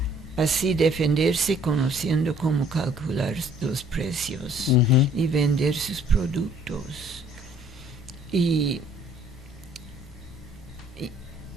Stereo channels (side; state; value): both; normal; correlation 0.58